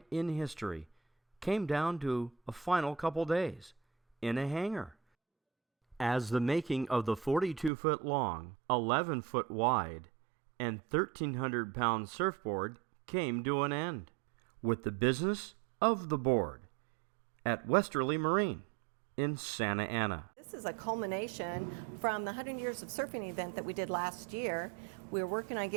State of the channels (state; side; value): drops out; left; at 7.7 s